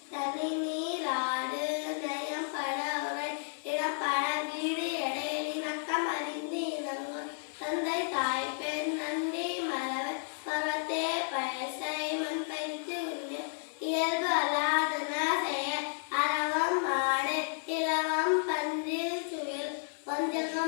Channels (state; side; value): silent; right; digital silence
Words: தனி நீராடு நயம் பட உரை இடப்பட வீடு எடையில் இணக்கம் அறிந்து இணங்கும் தந்தை தாய் பெண் நன்றி மறவர் பருவத்தே பழசை மண் பயிற்சி உண்டு இயல்பு அல்லாதன செய்ய அறவம் மாடு இலவம் பன்றில் சுவில்